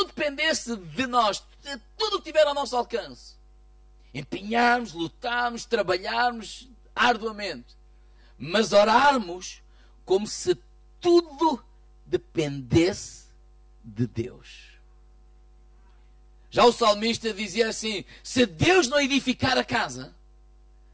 dependesse de nós. De tudo que tiver ao nosso alcance. Empenharmos, lutarmos, trabalharmos arduamente. Mas orarmos como se tudo dependesse de Deus. Já o salmista dizia assim, se Deus não edificar a casa,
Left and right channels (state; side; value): identical; both; correlation 1.00